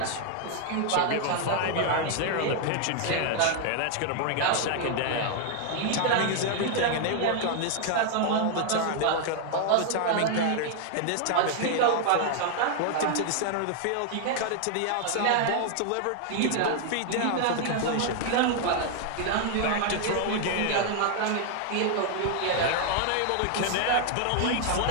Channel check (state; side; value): different; both; correlation 0.00